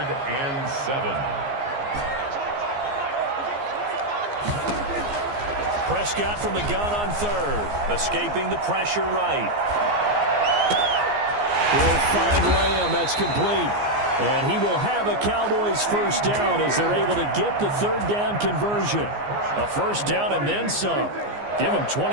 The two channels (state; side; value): late; left; 15 ms